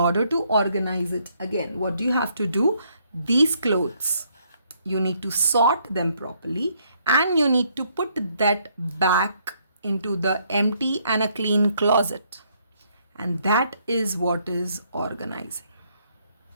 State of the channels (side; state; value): both; inverted; correlation -0.70